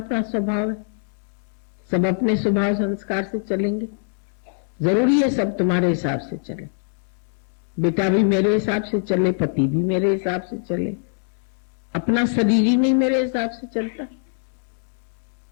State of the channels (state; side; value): silent; right; 63 dB below the other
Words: स्वभाव है, सब अपने स्वभाव संस्कार से चलेंगे। जरूरी है सब तुम्हारे हिसाब से चले, बेटा भी मेरे हिसाब से चले, पति भी मेरे हिसाब से चले। अपना शरीर ही नहीं मेरे हिसाब से चलता।